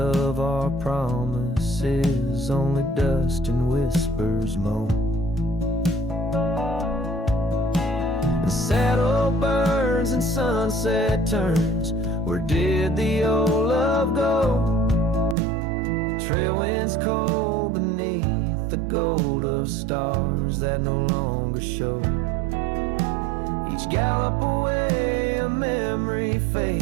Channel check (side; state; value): left; drops out; at 15.4 s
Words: our promises, only dust and whispers moan. The saddle burns and sunset turns, where did the old love go? Trail winds cold beneath the gold of stars that no longer show. Each gallop away a memory